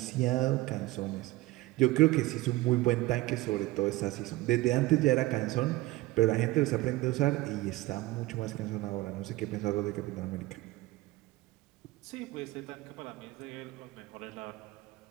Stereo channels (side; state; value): left; quieter; 19.0 dB